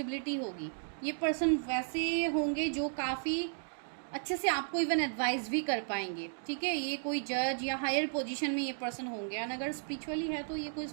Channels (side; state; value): left; silent; digital silence